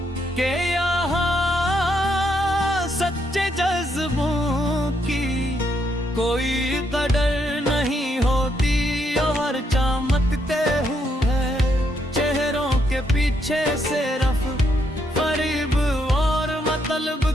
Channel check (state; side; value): normal; both; correlation 0.76